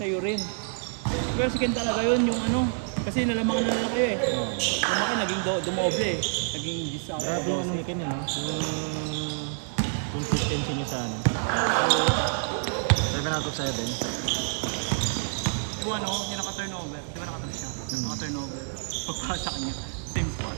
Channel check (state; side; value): silent; left; digital silence